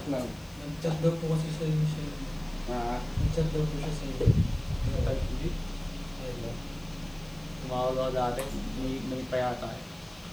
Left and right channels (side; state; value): left; noise; hiss, 24 dB below the sound